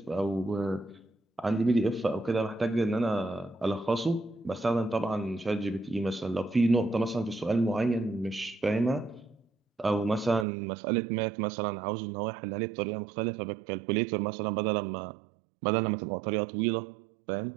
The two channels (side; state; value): left; drops out; at 10.5 s